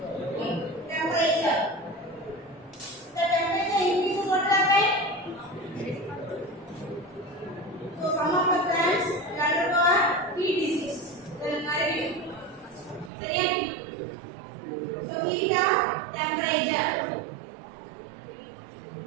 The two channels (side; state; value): left; drops out; at 13.1 s